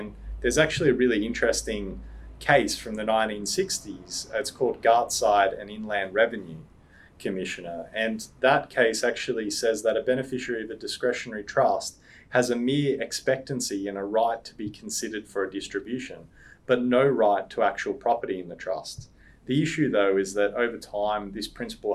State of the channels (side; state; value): both; identical; correlation 1.00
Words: there's actually a really interesting case from the 1960s. It's called Gartside and Inland Revenue Commissioner. And that case actually says that a beneficiary of a discretionary trust has a mere expectancy and a right to be considered for a distribution, but no right to actual property in the trust. The issue, though, is that over time, this